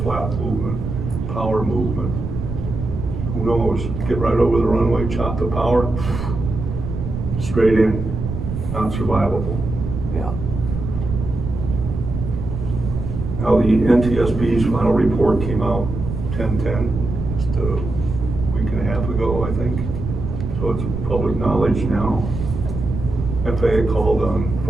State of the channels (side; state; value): right; noise; rumble, 5 dB below the sound